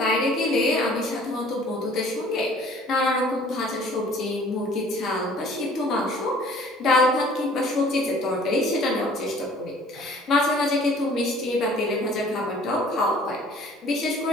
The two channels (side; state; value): both; normal; correlation 0.53